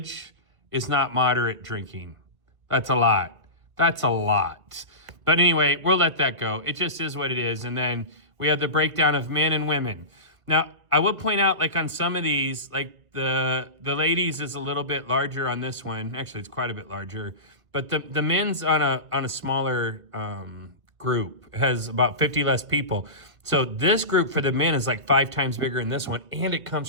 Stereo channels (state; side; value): late; left; 1.9 ms